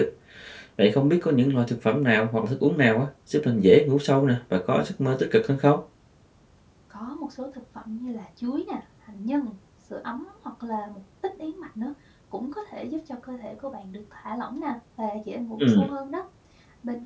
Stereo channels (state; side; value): identical; both; correlation 1.00